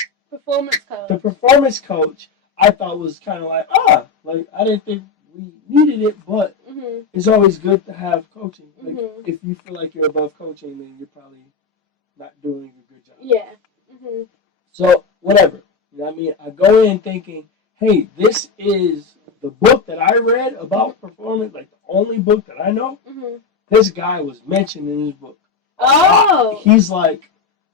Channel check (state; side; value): quieter; right; 5.2 dB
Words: performance coach I thought was kind of like I didn't think we needed it, but it's always good to have coaching. Like if you feel like you're above coaching, then you're probably not doing a good job. Yeah. So whatever, you know what I mean. I go in thinking, hey, this is the book that I read about performance, like the only book that I know. This guy was mentioned in his book. Oh. He's like,